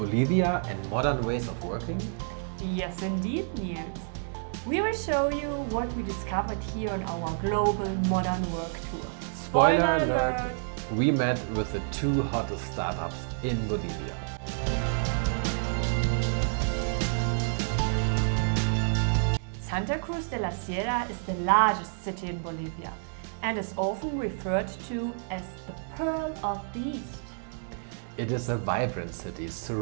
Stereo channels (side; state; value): left; silent; digital silence